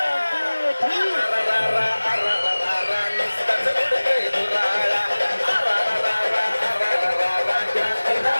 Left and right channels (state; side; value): inverted; both; correlation -1.00